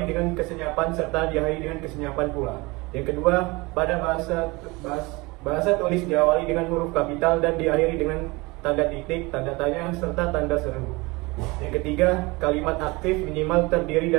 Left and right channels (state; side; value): quieter; left; 24.2 dB